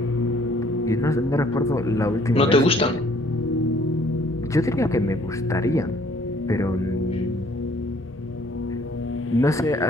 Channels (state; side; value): normal; both; correlation 0.60